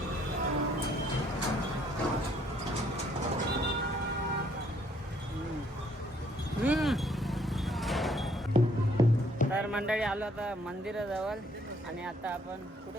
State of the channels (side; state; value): both; normal; correlation 0.66